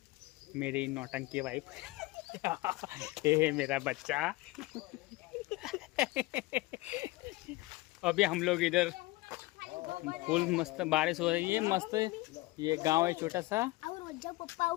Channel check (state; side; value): quieter; right; 20.6 dB